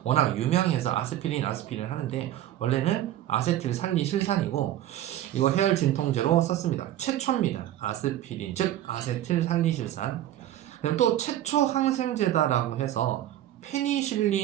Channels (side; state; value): left; quieter; 12.8 dB